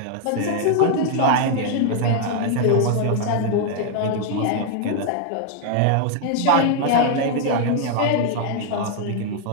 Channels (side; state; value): both; different; correlation 0.00